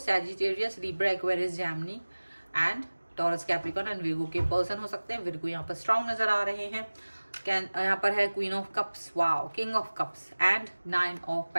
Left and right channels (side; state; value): both; inverted; correlation -1.00